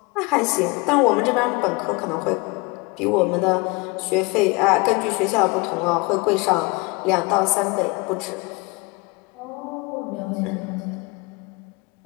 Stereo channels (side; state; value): right; quieter; 26.7 dB